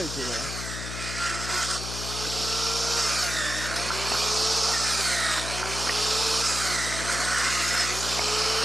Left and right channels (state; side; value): noise; left; hum, 7 dB below the sound